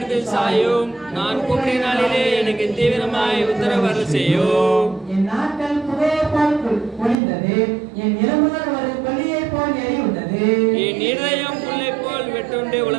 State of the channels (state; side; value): drops out; left; at 7.2 s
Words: சாயும். நான் கூப்பிடும் நாளிலே எனக்கு தீவிரமாய் உத்தரவு செய்யும். என் நாட்கள் புகையை போல் ஒளிந்தது, என் எலும்புகள் ஒரு கொல்லியை போல் எரியுண்டது. என் இருதயம் புல்லை போல் வெட்டுண்டு